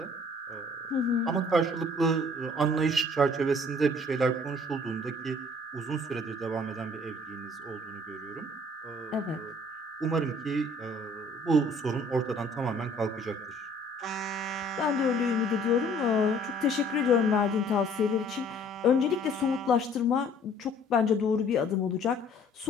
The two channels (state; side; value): normal; both; correlation 0.56